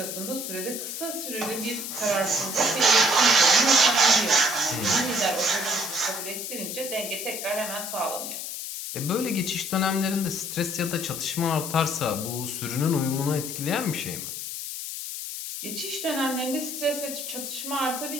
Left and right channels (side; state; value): left; noise; hiss, 6 dB below the sound